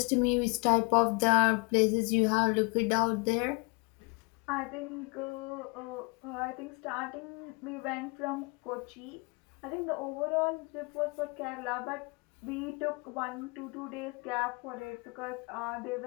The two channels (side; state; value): right; quieter; 30.9 dB